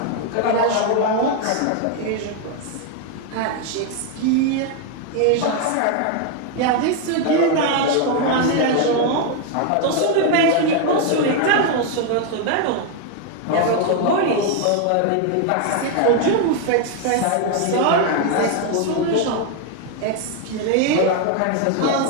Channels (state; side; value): different; both; correlation 0.01